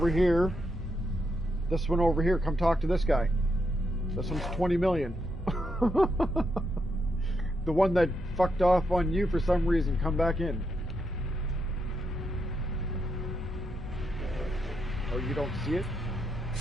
here. This one over here, come talk to this guy. This one's 20 million. The one that fucked off on you for some reason, come back in. Oh, you don't see it?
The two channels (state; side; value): normal; both; correlation 0.81